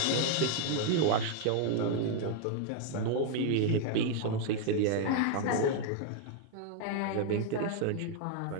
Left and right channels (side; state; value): both; different; correlation 0.00